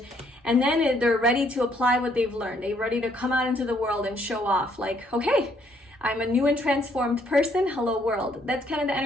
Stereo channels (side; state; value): both; normal; correlation 0.68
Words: and then they're ready to apply what they've learned. They're ready to come out into the world and show off, like, okay, I'm a new and transformed person. Hello world. That's kind of the